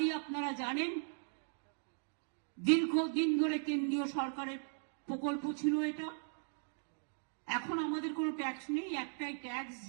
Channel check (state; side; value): silent; left; digital silence